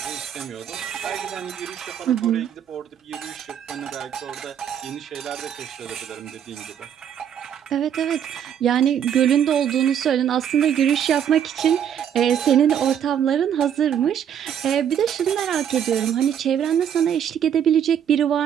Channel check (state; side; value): quieter; left; 9.0 dB